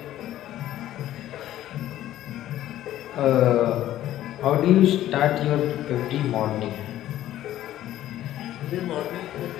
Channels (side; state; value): right; quieter; 13.3 dB